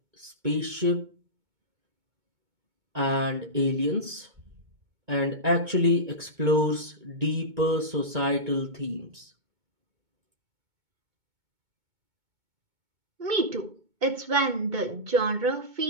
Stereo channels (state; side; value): late; left; 2.2 ms